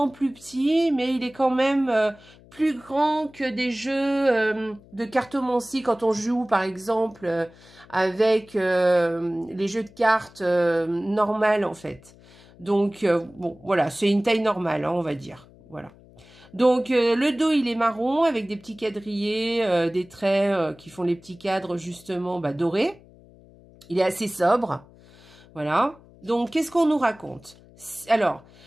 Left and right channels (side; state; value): left; noise; hum, 25 dB below the sound